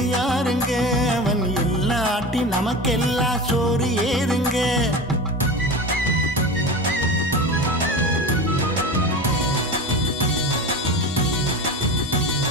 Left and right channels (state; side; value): normal; both; correlation 0.29